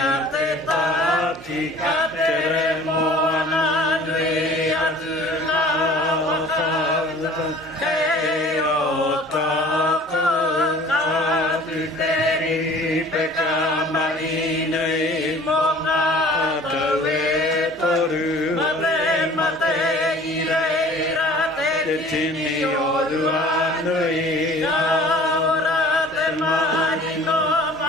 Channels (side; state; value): both; normal; correlation 0.48